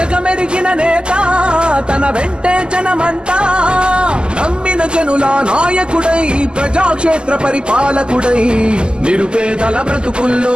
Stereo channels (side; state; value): left; late; 0.048 ms